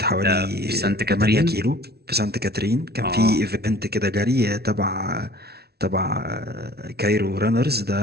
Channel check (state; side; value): late; left; 0.46 ms